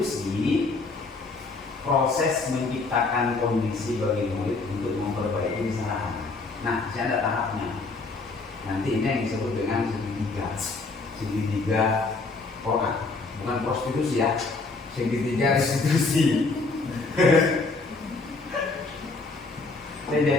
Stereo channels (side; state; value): right; quieter; 3.8 dB